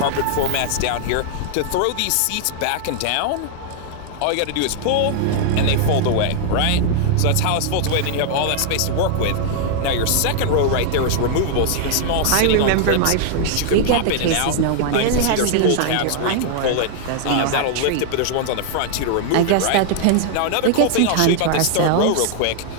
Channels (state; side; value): different; both; correlation 0.00